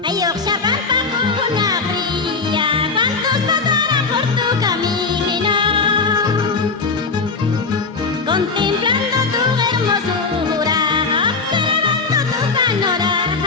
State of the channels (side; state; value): right; quieter; 4.4 dB